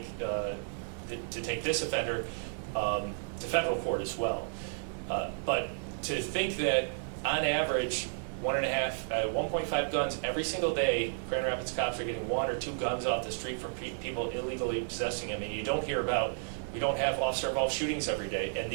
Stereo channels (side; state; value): left; silent; digital silence